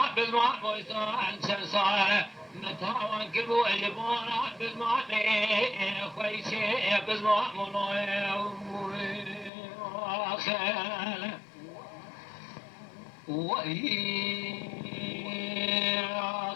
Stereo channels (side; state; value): right; drops out; at 9.5 s